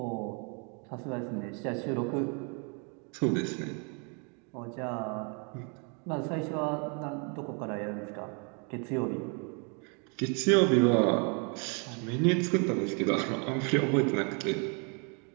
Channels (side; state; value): left; quieter; 36.4 dB